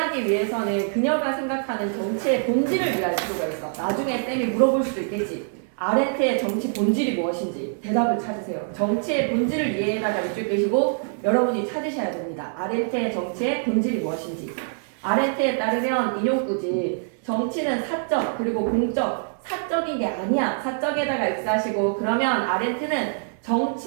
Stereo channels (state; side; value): silent; left; 62 dB below the other